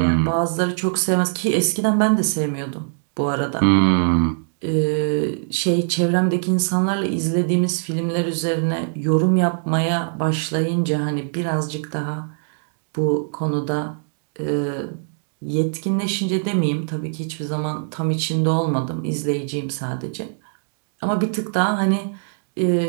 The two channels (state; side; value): silent; left; digital silence